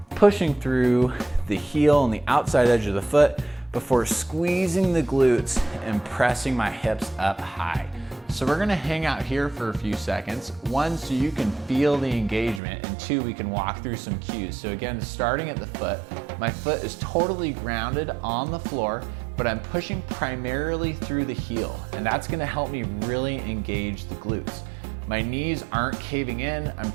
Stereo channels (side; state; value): left; drops out; at 12.6 s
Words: pushing through the heel and the outside edge of the foot before squeezing the glutes and pressing my hips up high. So we're gonna hang out here for a few seconds. One, so you can feel the engagement, and two, we can walk through some cues. So again, starting at the foot, my foot is totally grounded on the floor, but I'm pushing primarily through the heel, and that's gonna help me really engage the glutes. My knees aren't caving in. I'm